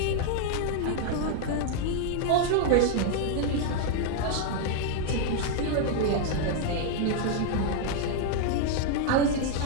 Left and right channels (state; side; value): different; both; correlation 0.00